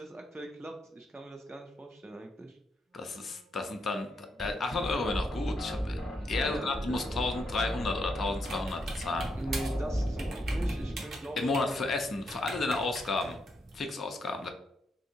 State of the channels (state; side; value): normal; both; correlation 0.80